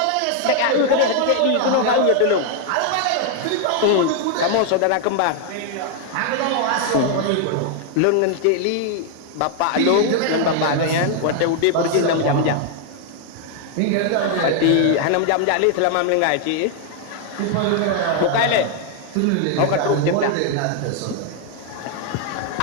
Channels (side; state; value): both; different; correlation 0.00